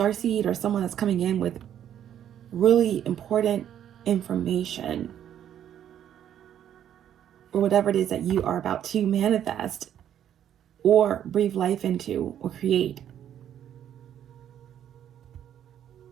or someone that's coming in with really important information or whatever it is that you are about to manifest or breathe life into or create.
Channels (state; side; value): quieter; left; 10.2 dB